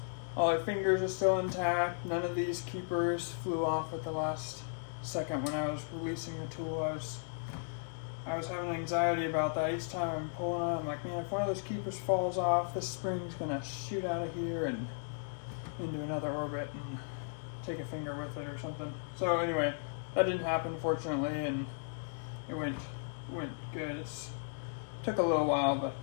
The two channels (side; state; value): right; silent; digital silence